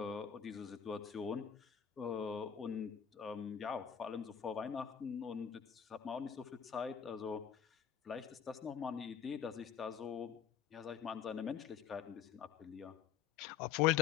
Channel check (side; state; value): right; quieter; 8.3 dB